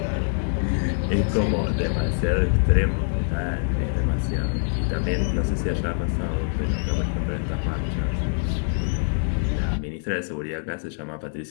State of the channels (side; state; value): right; silent; 62 dB below the other